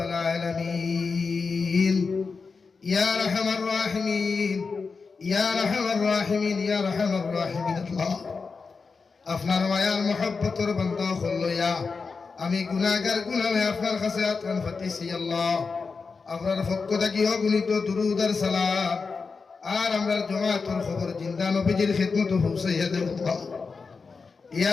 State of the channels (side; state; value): right; quieter; 4.7 dB